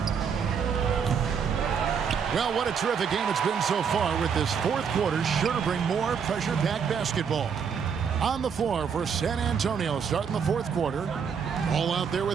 Well, what a terrific game it's been so far, with this fourth quarter sure to bring more pressure-packed basketball. On the floor for San Antonio starting the fourth quarter. All out there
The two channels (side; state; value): left; quieter; 6.8 dB